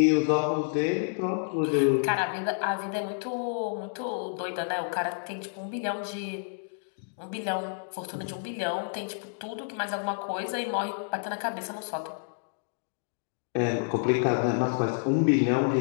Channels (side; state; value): right; silent; digital silence